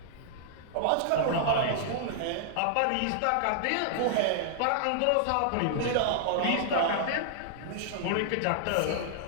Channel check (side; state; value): both; different; correlation -0.01